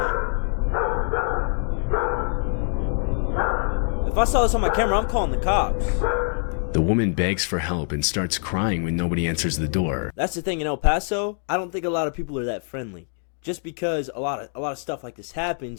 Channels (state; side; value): silent; right; 61 dB below the other